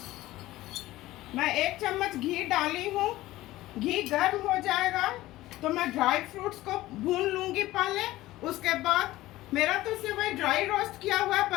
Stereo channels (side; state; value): right; quieter; 16.8 dB